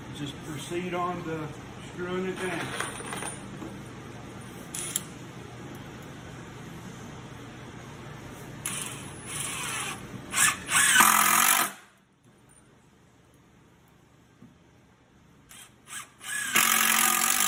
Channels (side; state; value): both; identical; correlation 1.00